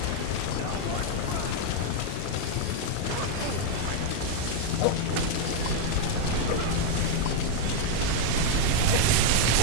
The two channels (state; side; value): different; both; correlation 0.00